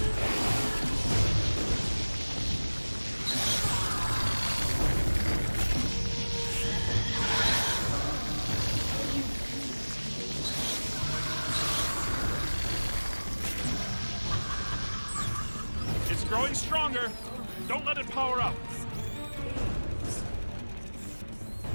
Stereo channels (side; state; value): both; inverted; correlation -1.00